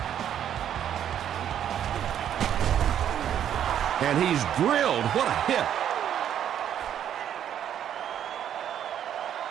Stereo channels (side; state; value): left; quieter; 9.9 dB